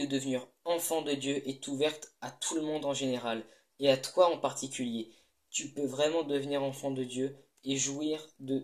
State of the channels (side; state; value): both; identical; correlation 1.00